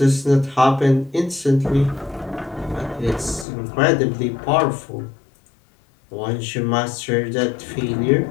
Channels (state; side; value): drops out; right; at 3.5 s